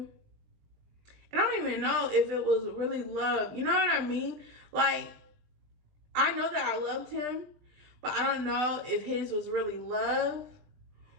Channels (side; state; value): left; late; 20 ms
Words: and I don't even know if it was really love. You know what I mean? Like, I know that I loved him, but I don't know if his was really love